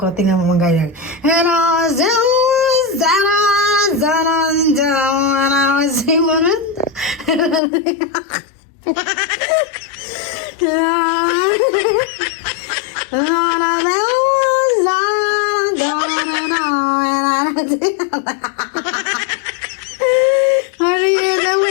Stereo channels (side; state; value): right; drops out; at 7.6 s